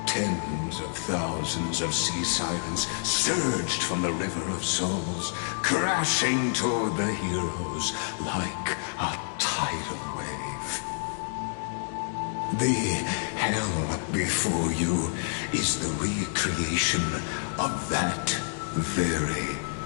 Tens of thousands of sea sirens surged from the River of Souls, crashing toward the heroes like a tidal wave. The hell before you is the recreation of that very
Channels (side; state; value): right; silent; digital silence